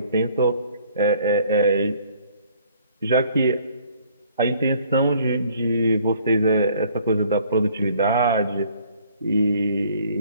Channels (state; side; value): inverted; both; correlation -0.59